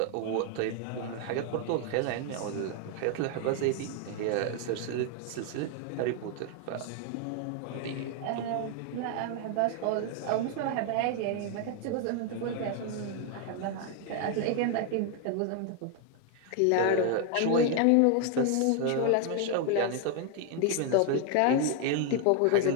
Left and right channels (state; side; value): different; both; correlation 0.01